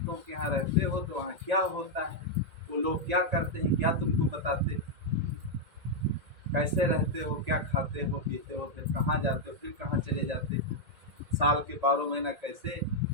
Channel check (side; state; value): left; late; 1.9 ms